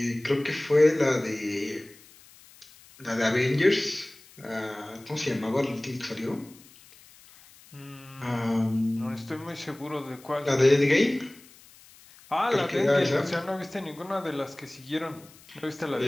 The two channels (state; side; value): noise; left; hiss, 24 dB below the sound